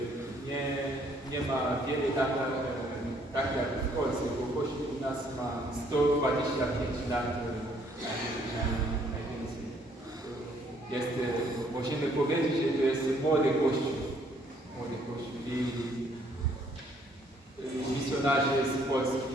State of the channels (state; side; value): normal; both; correlation 0.65